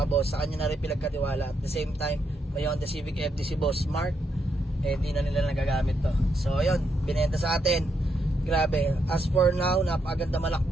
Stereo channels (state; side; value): normal; both; correlation 0.79